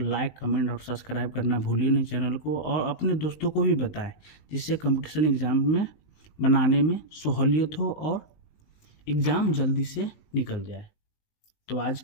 कमेंट और सब्सक्राइब करना भूलिए नहीं चैनल को, और अपने दोस्तों को भी बताएं, जिससे कंपटीशन एग्ज़ाम में बनाने में सहूलियत हो और एग्ज़ाम जल्दी से निकल जाए। तो आज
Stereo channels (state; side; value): late; right; 19 ms